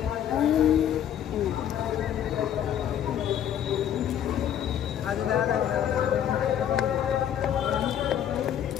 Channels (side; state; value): right; quieter; 9.9 dB